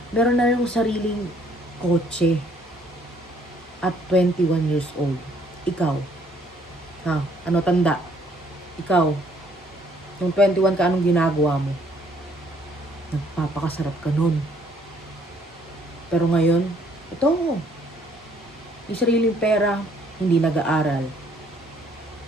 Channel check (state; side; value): normal; both; correlation 0.64